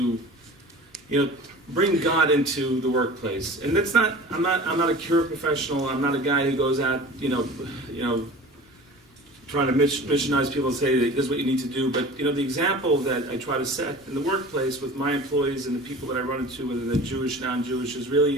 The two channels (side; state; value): both; normal; correlation 0.40